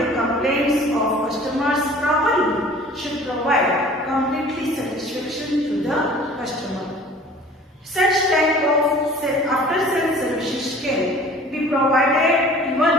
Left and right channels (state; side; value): normal; both; correlation 0.47